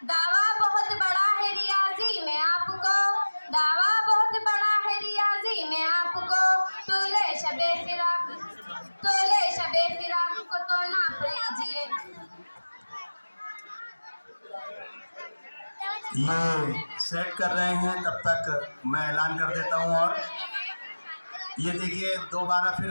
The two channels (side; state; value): both; inverted; correlation -1.00